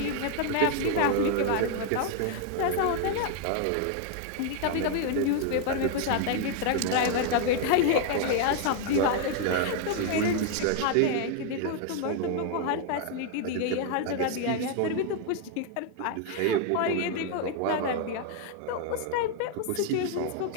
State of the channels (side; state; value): both; different; correlation 0.00